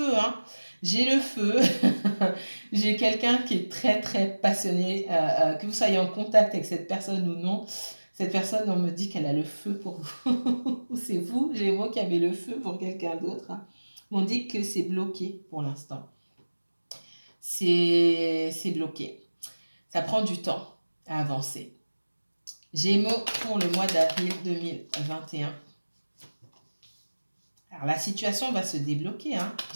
hein. J'ai le feu. J'ai quelqu'un qui est très, très passionné. Que vous soyez en contact avec cette personne ou non, cette personne, on me dit qu'elle a le feu pour vous. C'est vous, Gémeaux, qui avez le feu pour quelqu'un d'autre. Hein. On dit que c'est bloqué pour l'instant. C'est bloqué. Ça prend du temps à avancer. Gémeaux pour le mois d'avril 2021. Alors, la situation va se débloquer. Hein.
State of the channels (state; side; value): inverted; both; correlation -1.00